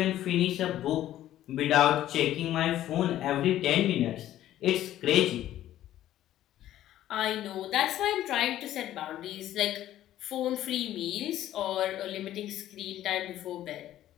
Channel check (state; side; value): quieter; right; 13.0 dB